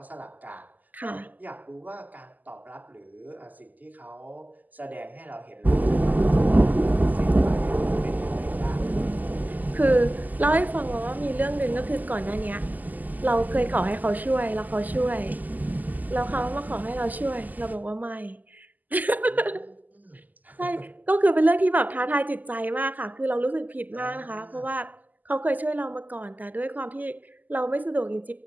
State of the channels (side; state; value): left; late; 0.082 ms